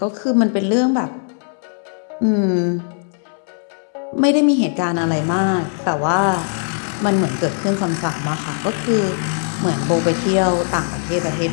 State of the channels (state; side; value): silent; right; 66 dB below the other